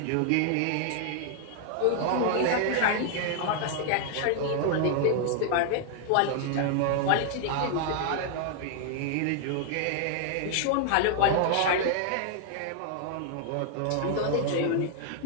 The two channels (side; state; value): both; different; correlation 0.00